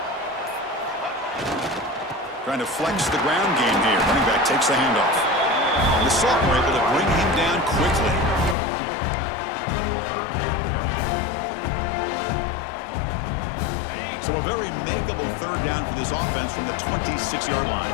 Trying to flex the ground game here. Running back takes the handoff. The sophomore able to bring him down quickly. So a very makeable 3rd down for this offense from the 26-yard line.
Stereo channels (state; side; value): drops out; right; at 8.6 s